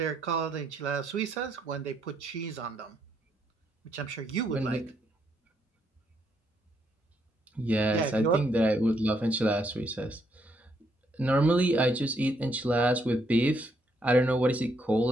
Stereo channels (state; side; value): normal; both; correlation 0.74